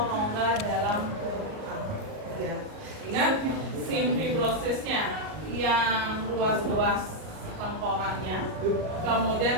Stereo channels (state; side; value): late; left; 38 ms